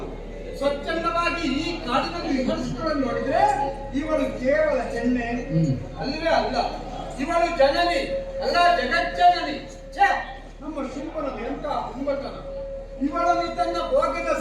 ಸ್ವಚ್ಛಂದವಾಗಿ ಈ ಕಾಡಿನಲ್ಲಿ ವಿಮರ್ಶಿಸಿಕೊಂಡು ನೋಡಿದ್ರೆ ಇವಳು ಕೇವಲ ಹೆಣ್ಣೆ ಅಲ್ಲವೇ ಅಲ್ಲ, ಇವಳು ಜನನಿ ಅಲ್ಲ, ಜಗಜ್ಜನನಿ. ಛೇ, ನಮ್ಮ ಶುಂಭನದು ಎಂತ ಹುಂಬತನ! ಇವಳನ್ನು ತನ್ನ ಭೋಗದ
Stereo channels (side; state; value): both; identical; correlation 1.00